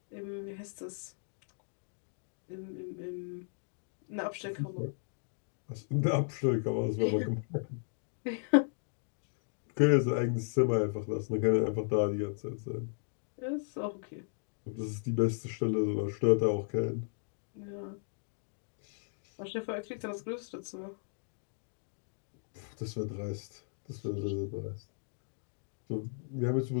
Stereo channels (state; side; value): silent; right; digital silence